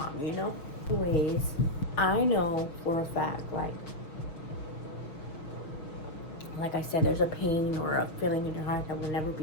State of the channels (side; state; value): right; late; 6.3 ms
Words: Anyways, I know for a fact, like I said, there's a pain or a feeling in your heart that will never